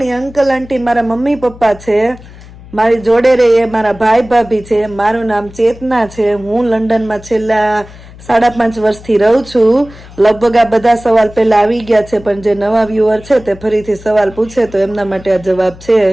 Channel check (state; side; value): noise; left; hum, 19 dB below the sound